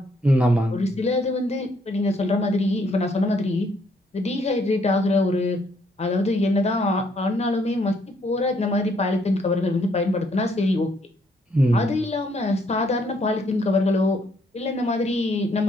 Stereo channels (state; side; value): normal; both; correlation 0.69